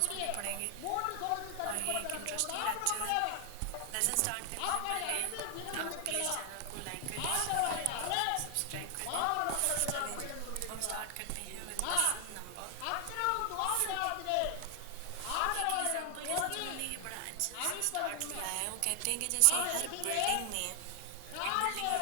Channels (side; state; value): both; different; correlation 0.00